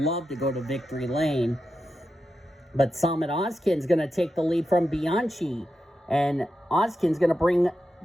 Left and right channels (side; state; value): both; normal; correlation 0.89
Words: to go to victory lane. But Summit Oskin's going to take the lead from Bianchi. And Oskin's going to bring